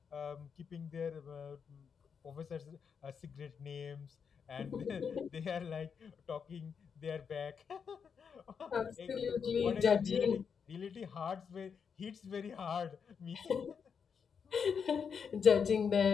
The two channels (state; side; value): quieter; right; 6.5 dB